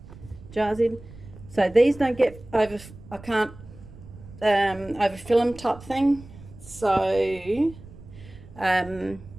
jars in. So these don't get over, I can't overfill them type thing. So I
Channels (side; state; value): right; noise; rumble, 18 dB below the sound